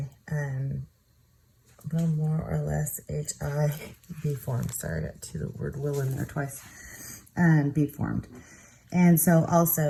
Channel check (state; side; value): identical; both; correlation 1.00